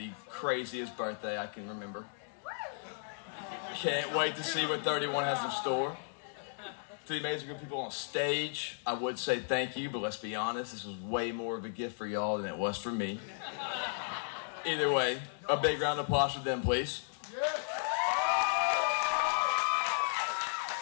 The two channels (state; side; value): silent; right; 55 dB below the other